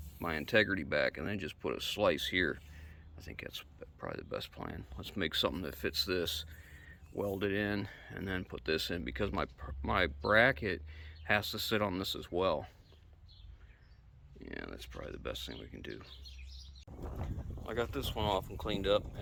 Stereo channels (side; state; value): both; identical; correlation 1.00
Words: integrity back, and then just put a slice here. I think that's probably the best plan. Let's make something that fits this, weld it in, and then put this in, because my bracket has to sit on this as well. Yeah, that's probably the best thing we can do. I got this one off and cleaned up,